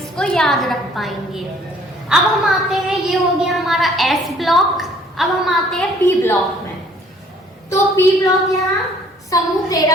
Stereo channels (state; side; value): normal; both; correlation 0.58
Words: को याद रख पाएंगे। अब हम आते हैं, ये हो गया हमारा एस ब्लॉक। अब हम आते हैं पी ब्लॉक में। तो पी ब्लॉक यहाँ समूह